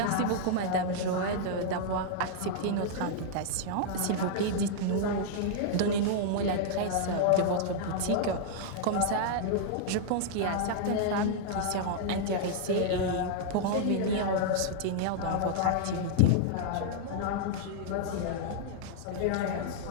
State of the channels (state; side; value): different; both; correlation -0.01